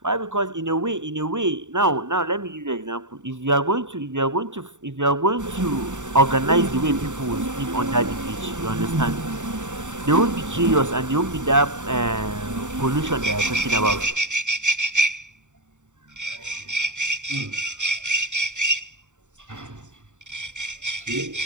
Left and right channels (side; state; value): left; late; 0.85 ms